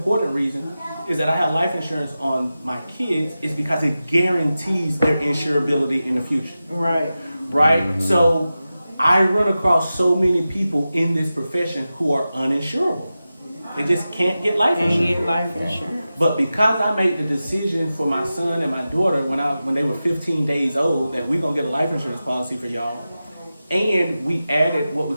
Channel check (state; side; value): inverted; both; correlation -0.94